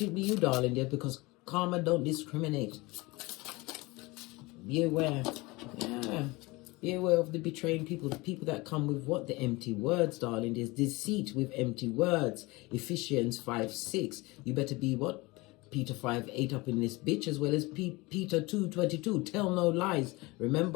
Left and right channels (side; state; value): right; quieter; 23.3 dB